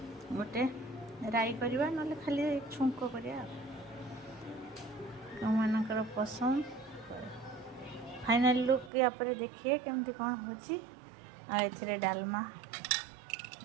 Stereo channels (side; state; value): left; drops out; at 8.9 s